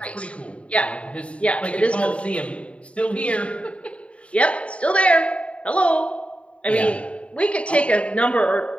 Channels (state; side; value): late; right; 0.062 ms